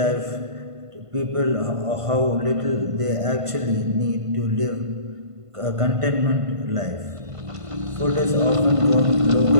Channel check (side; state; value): left; late; 1.5 ms